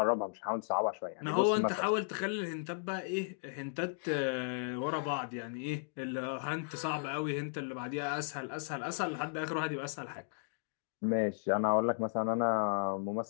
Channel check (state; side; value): silent; right; digital silence